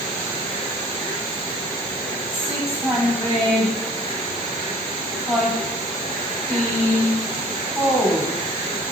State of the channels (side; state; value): both; normal; correlation 0.50